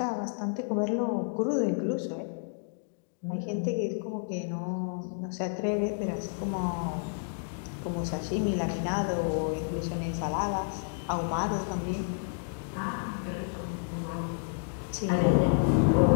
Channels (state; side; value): silent; right; digital silence